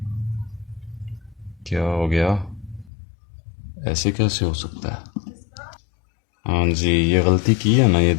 क्या हो गया, ऐसे कैसे हो सकता है? हाँ जी, ये गलती की है ना, ये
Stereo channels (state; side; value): drops out; right; at 2.9 s